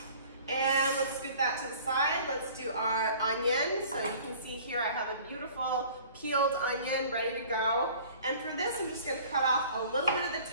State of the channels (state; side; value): inverted; both; correlation -0.48